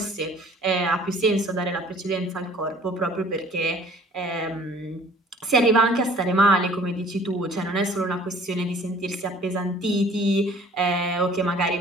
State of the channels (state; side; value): normal; both; correlation 0.53